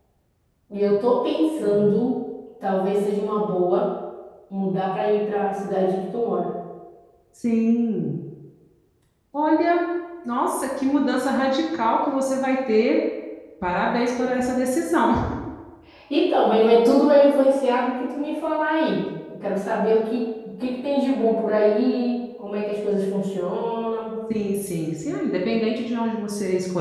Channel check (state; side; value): identical; both; correlation 1.00